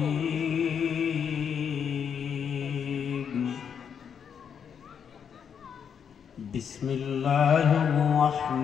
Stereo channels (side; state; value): right; quieter; 7.5 dB